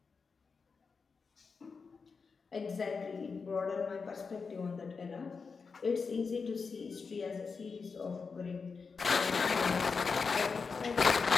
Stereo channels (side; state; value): right; quieter; 5.0 dB